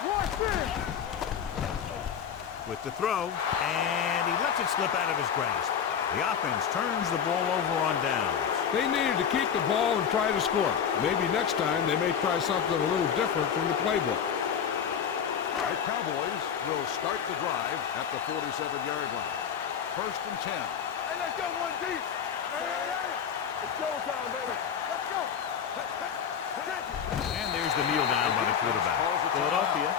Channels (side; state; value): right; quieter; 7.8 dB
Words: Watch this. With the throw, and he lets it slip out of his grasp. The offense turns the ball over on downs. They needed to keep the ball and try to score. Maybe next time they may try something a little different from the playbook. The Cowboys will start the drive at the 47-yard line. 1st and 10. Hey, let's go, 1 deep. Hey. It's showtime, baby. Let's go. And there's the kneel down by the quarterback. Philadelphia